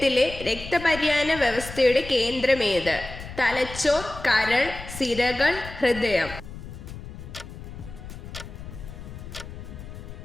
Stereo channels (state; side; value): noise; left; rumble, 12 dB below the sound